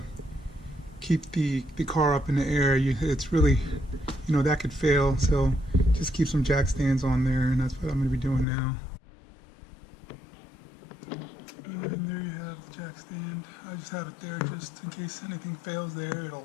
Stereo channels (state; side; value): drops out; right; at 8.5 s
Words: keep the car up in the air. It's really, that could fail. So just keep some jack stands on there, and that's what I'm going to be doing now. And there you have the jack stand. I just have it there just in case anything fails there.